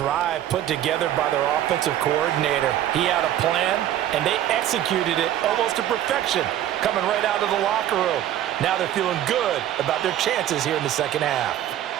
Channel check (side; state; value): left; quieter; 12.0 dB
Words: put together by their offensive coordinator. He had a plan, and they executed it almost to perfection, coming right out of the locker room. Now they're feeling good about their chances here in the second half.